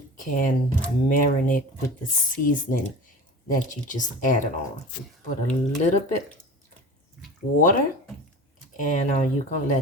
can marinate with the seasoning that you just added on. You put a little bit water and you can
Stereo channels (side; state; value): both; normal; correlation 0.35